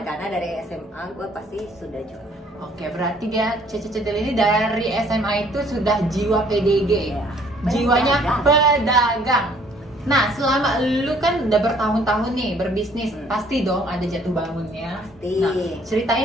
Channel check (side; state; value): both; normal; correlation 0.60